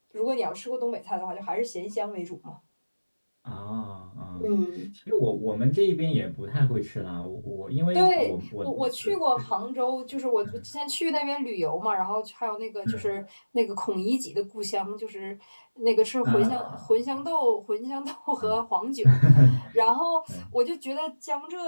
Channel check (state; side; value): inverted; both; correlation -1.00